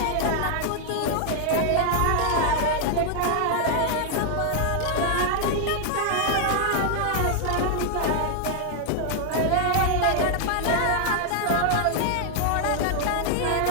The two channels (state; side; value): different; both; correlation 0.00